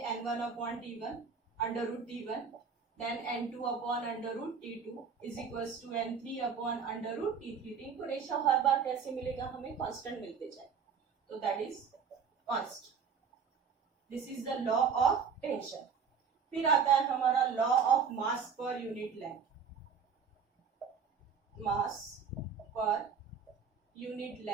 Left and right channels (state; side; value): quieter; left; 6.3 dB